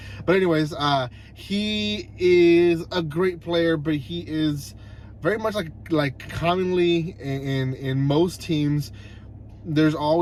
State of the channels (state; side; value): identical; both; correlation 1.00